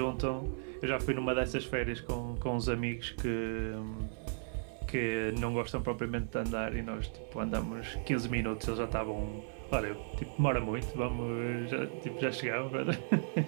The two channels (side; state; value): left; silent; 54 dB below the other